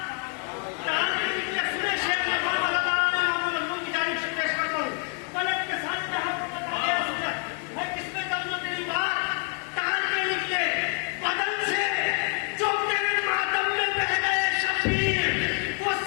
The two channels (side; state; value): right; quieter; 36.3 dB